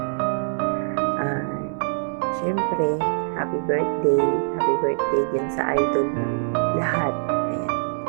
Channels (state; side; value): silent; left; digital silence